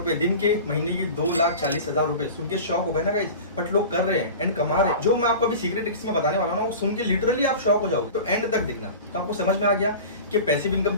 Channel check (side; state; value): both; inverted; correlation -0.35